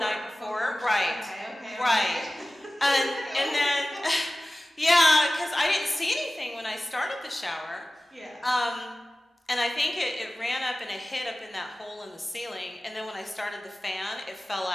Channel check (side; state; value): both; normal; correlation 0.96